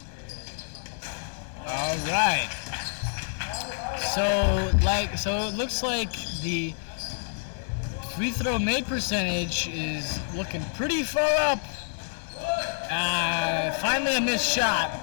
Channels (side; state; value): right; silent; digital silence